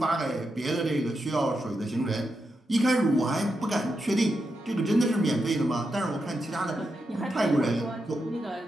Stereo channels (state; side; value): normal; both; correlation 0.86